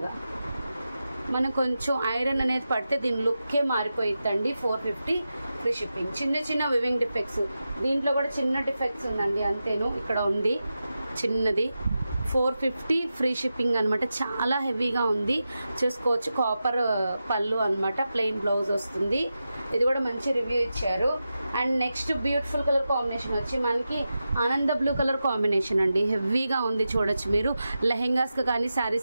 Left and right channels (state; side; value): inverted; both; correlation -0.91